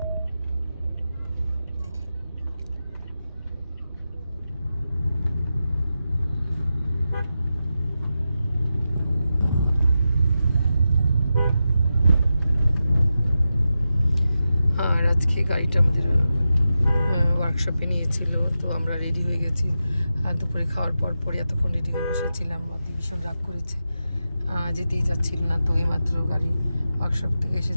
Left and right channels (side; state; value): both; inverted; correlation -0.91